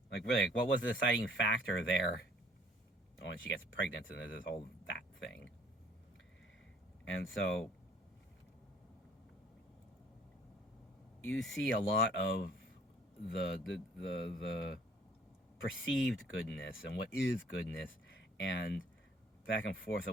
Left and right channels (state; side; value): normal; both; correlation 0.58